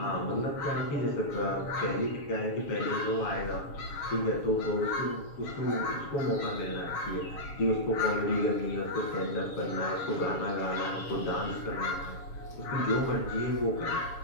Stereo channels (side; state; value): right; late; 7.1 ms